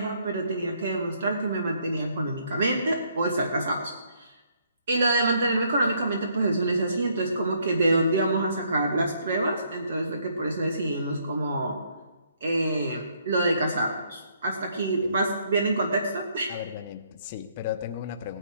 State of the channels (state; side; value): inverted; both; correlation -0.69